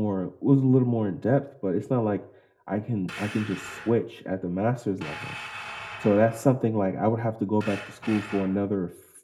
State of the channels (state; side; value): identical; both; correlation 1.00